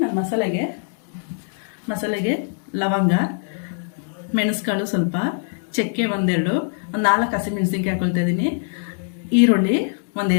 ನಾನು ಮಸಾಲೆಗೆ ಲವಂಗ, ಮೆಣಸುಕಾಳು ಸ್ವಲ್ಪ, ಚಕ್ಕೆ ಒಂದೆರಡು, ಒಂದು 4 ಹಸಿಮೆಣಸಿನ್ಕಾಯಿ ಹಾಕೊಳ್ತಾ ಇದ್ದೀನಿ, ಈರುಳ್ಳಿ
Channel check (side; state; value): right; silent; digital silence